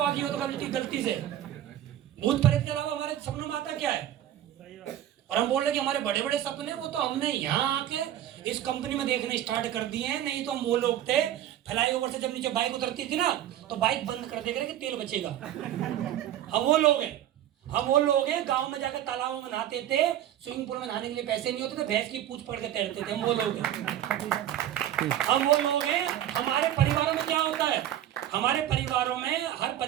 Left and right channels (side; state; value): left; quieter; 11.9 dB